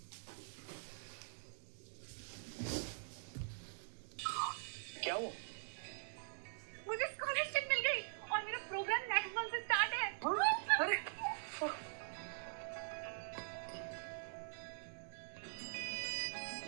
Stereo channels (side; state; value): left; silent; digital silence